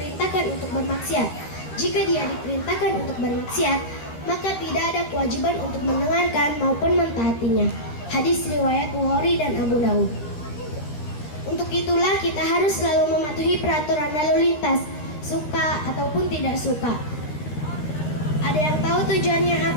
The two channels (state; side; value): late; right; 13 ms